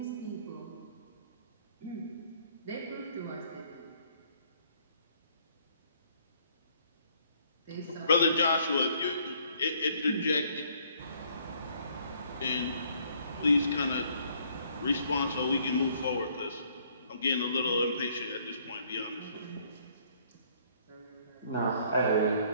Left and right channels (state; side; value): inverted; both; correlation -0.64